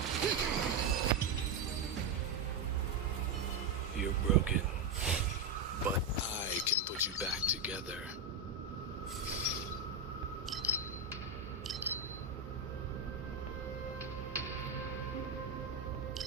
You're broken, but I can put you back together.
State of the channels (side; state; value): left; quieter; 3.9 dB